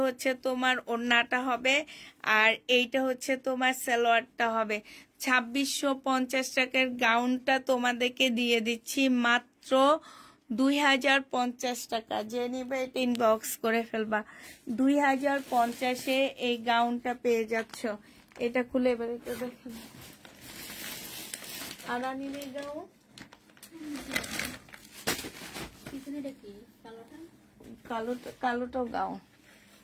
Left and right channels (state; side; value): identical; both; correlation 1.00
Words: হচ্ছে তোমার ওড়নাটা হবে, আর এইটা হচ্ছে তোমার সালোয়ারটা হবে। 2650 টাকার গাউনটা তোমাদেরকে দিয়ে দিচ্ছি মাত্র 2050 টাকা। যে নিবে ইনবক্স করে ফেলবা। 2050-এ এই গাউনটা পেয়ে যাচ্ছ। এটা খুলে এবার এটা দেখো, আরানিনের গাউন, কালোটাও গাউন।